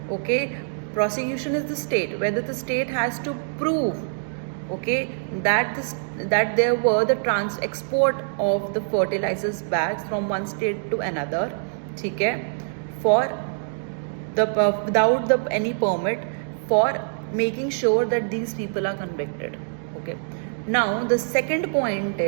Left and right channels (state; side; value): silent; left; digital silence